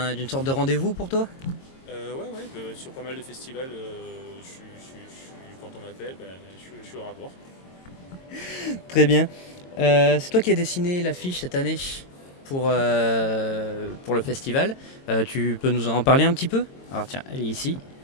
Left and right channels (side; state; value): right; late; 22 ms